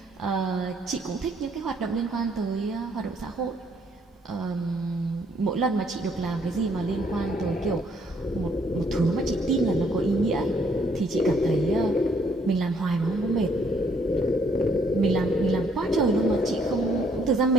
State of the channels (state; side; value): normal; both; correlation 0.67